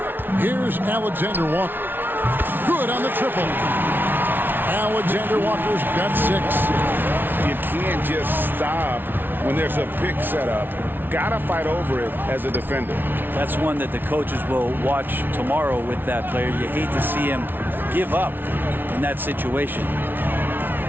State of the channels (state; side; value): late; left; 0.097 ms